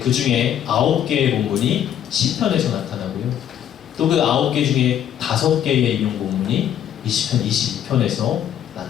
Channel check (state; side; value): quieter; right; 10.1 dB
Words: 중에 9개의 본문이 시편에서 나타나고요. 또 그 9개 중에 5개의 인용 본문이 이 시편 22편에서